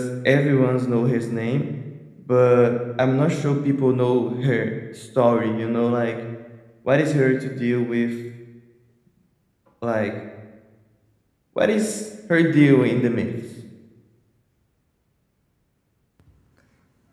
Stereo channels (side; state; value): both; identical; correlation 1.00